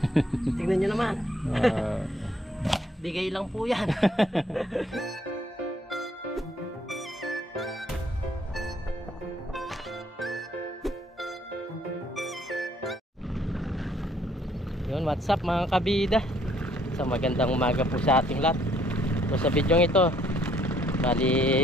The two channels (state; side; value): normal; both; correlation 0.66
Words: Tingnan nyo naman. Bigay lang po yan. Yun, what's up mga kabida. So magandang umaga po sa ating lahat. So sa video ito,